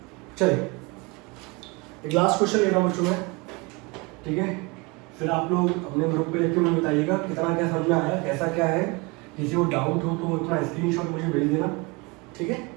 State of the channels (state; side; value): quieter; left; 26.7 dB